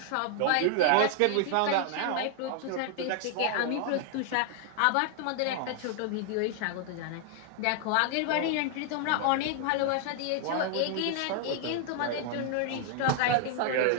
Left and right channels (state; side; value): different; both; correlation 0.00